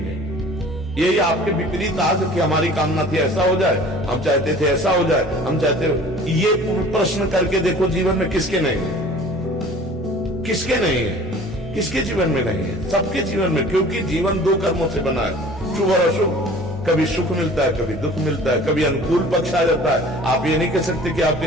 यही आपके विपरीत आज कि हमारी कामना थी ऐसा हो जाए, हम चाहते थे ऐसा हो जाए, हम चाहते, ये प्रश्न करके देखो जीवन में किसके नहीं है, किसके नहीं है, किसके जीवन में नहीं है? सबके जीवन में, क्योंकि जीवन दो कर्मों से बना है, शुभ और अशुभ। कभी सुख मिलता है, कभी दुख मिलता है, कभी अनुकूल पक्ष आ जाता है। आप ये नहीं कह सकते कि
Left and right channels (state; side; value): normal; both; correlation 0.47